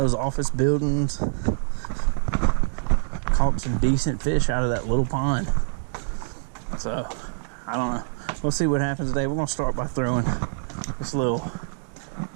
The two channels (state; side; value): silent; left; digital silence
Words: office buildings. Caught some decent fish out of that little pond. So, I don't know. We'll see what happens today. We're going to start by throwing this little